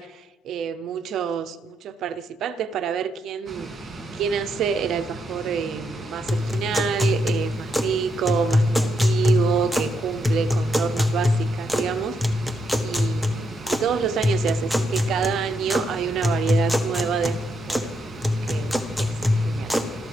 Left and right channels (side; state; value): both; normal; correlation 0.79